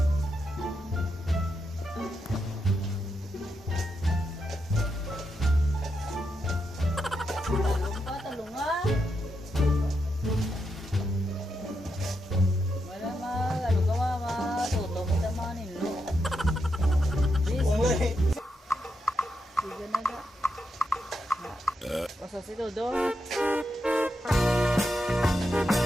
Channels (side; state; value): both; normal; correlation 0.84